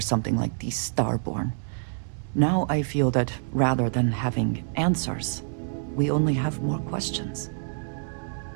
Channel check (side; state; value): left; silent; digital silence